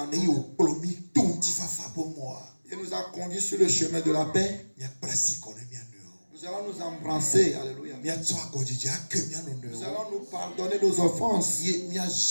Et nous, au plomi ton ti fa fa pour moi. il nous a conduits sur le chemin de la paix, Mia prasi kono mia no. nous allons nous embrasser. Alléluia. Mia tsoa godji ake mia no Nous no. allons nous pardonner nos offenses. Ye mia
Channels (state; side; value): inverted; both; correlation -1.00